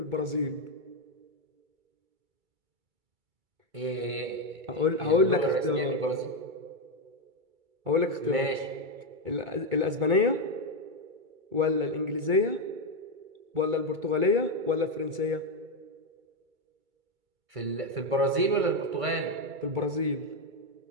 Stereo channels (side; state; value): left; late; 2.3 ms